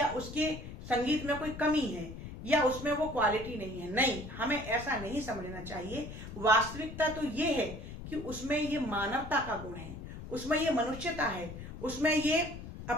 उसके संगीत में कोई कमी है, या उसमें वो क्वालिटी नहीं है। नहीं, हमें ऐसा नहीं समझना चाहिए। वास्तविकता तो ये है कि उसमें ये मानवता का गुण है, उसमें ये मनुष्यता है, उसमें ये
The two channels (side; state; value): left; noise; rumble, 11 dB below the sound